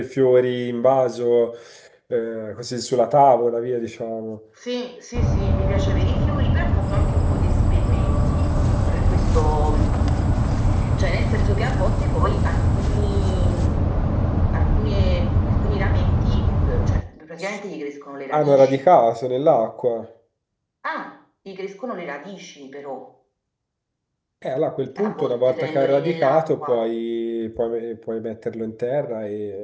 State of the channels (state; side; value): identical; both; correlation 1.00